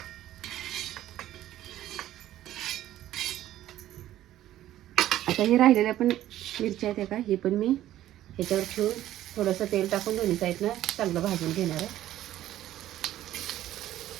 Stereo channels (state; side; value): quieter; left; 13.4 dB